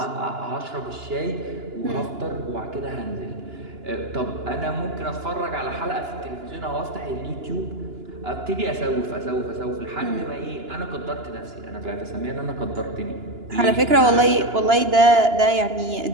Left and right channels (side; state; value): left; late; 2.9 ms